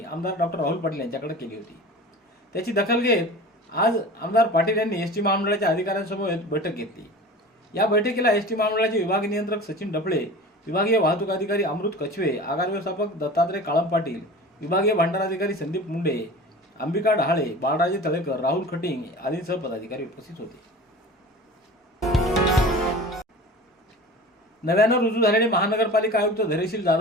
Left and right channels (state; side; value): normal; both; correlation 0.37